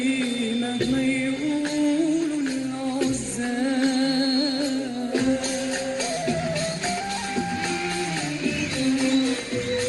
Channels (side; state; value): both; identical; correlation 1.00